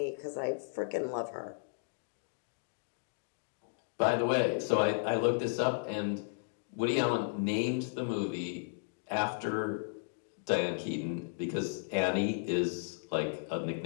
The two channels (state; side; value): silent; right; digital silence